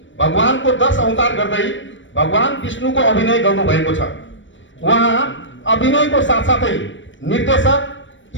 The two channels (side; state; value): right; late; 0.55 ms